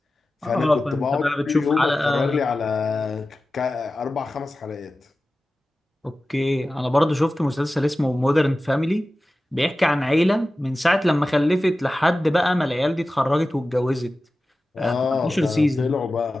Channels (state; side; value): normal; both; correlation 0.95